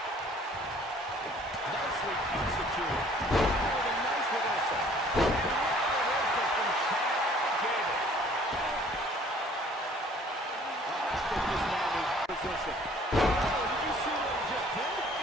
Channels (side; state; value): both; normal; correlation 0.55